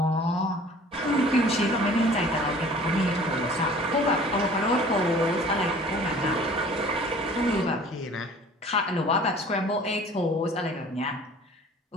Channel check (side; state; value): both; normal; correlation 0.48